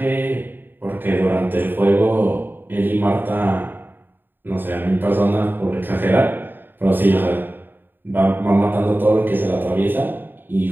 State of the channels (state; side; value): late; left; 0.094 ms